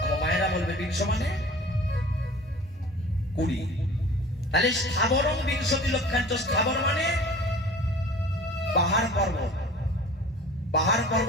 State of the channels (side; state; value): both; normal; correlation 0.43